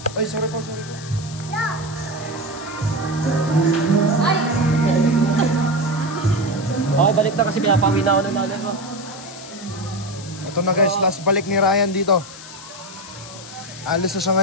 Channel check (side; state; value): left; noise; hiss, 15 dB below the sound